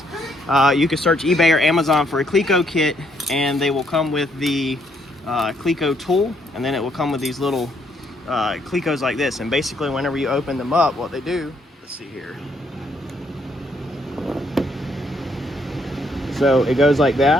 you can search eBay or Amazon for a Cleco kit, and they will come with the Cleco tool, and then it will come with these little Clecos like this. And basically, whenever you open them up, what they do, let's see here. So it goes like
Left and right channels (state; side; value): normal; both; correlation 0.71